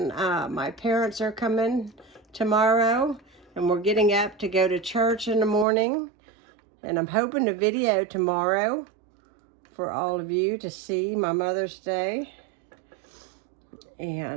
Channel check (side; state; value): left; drops out; at 5.7 s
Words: my parents are coming tomorrow, and we're getting up to go to church in the morning, and I'm hoping to video tomorrow for all of you to see my Mother's Day.